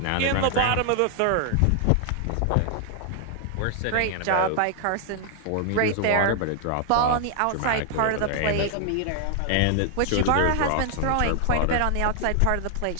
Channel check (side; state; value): both; different; correlation 0.00